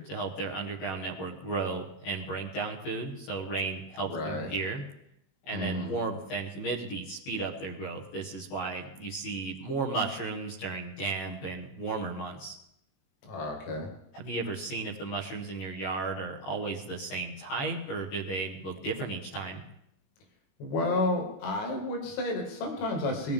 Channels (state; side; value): late; right; 21 ms